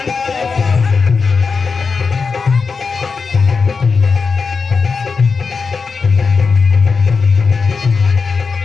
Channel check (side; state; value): right; quieter; 5.0 dB